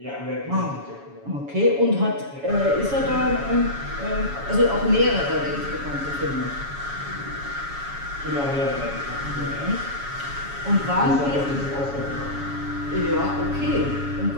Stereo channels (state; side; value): late; left; 7.1 ms